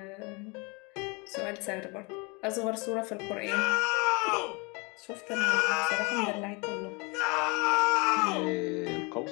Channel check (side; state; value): right; quieter; 29.2 dB